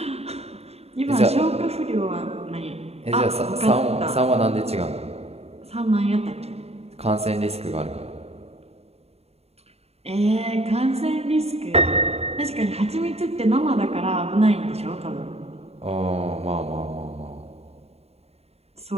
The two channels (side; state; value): left; late; 0.30 ms